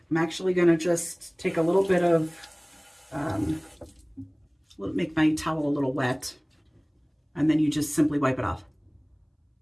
I'm actually gonna just take a little bit of, make my towel a little wet. And then you just simply wipe it off.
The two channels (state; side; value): identical; both; correlation 1.00